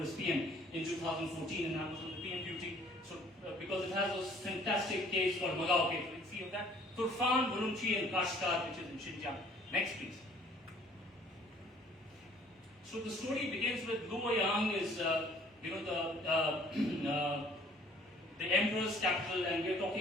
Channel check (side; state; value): both; normal; correlation 0.57